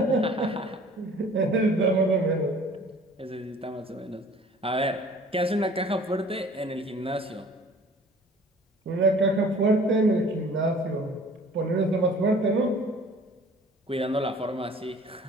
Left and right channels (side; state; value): both; normal; correlation 0.49